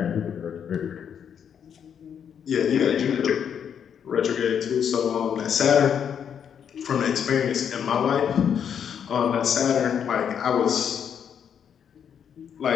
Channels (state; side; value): quieter; right; 8.1 dB